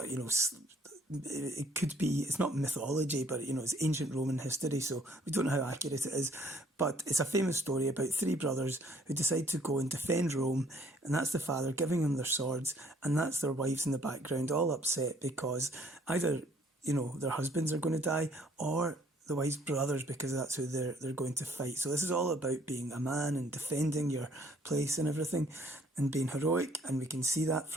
It could be, it's not mythology, but it's ancient Roman history, so we don't know how accurate it is, but it's a famous story about three brothers who decide to go and defend Rome, and that's the father giving them their swords, and that's their wives in the background all upset because either their husbands are going to die, or the wife's brothers, because that's who they're going to fight. So this is all about being a man and defending your place and everything, and being heroic. And we can see that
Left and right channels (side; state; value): both; normal; correlation 0.61